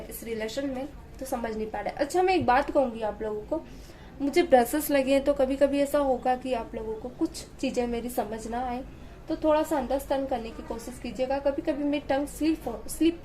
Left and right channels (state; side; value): identical; both; correlation 1.00